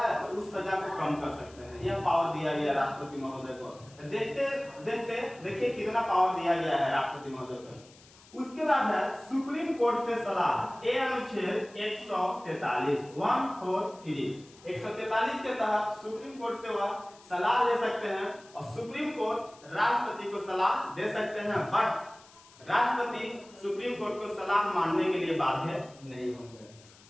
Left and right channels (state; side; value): noise; left; hiss, 24 dB below the sound